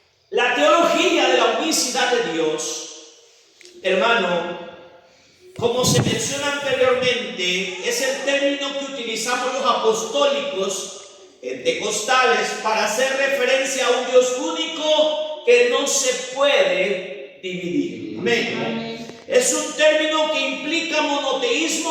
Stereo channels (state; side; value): identical; both; correlation 1.00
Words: La teología de la unicidad de Dios, hermano, como se menciona anteriormente, es el término que utilizamos los apostólicos pentecostales para hacer referencia a un Dios único que no se puede dividir. Amén. Es un término que implica